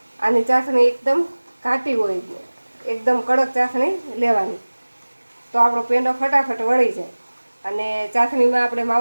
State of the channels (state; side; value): inverted; both; correlation -1.00